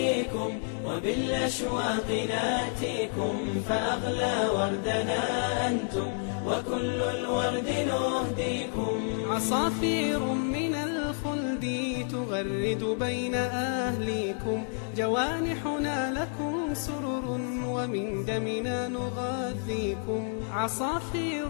وبالأشواق ناتيكم، فأغلى وردنا أنتم وكل الورد نهديكم. عصافير من الخلد تغرد بين أهليكم، جوانحنا لكم سرر ومن دمنا نغذيكم. عصافير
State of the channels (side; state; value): right; silent; 58 dB below the other